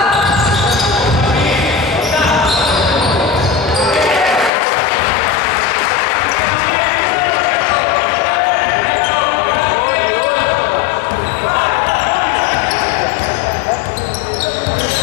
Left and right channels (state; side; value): drops out; right; at 4.5 s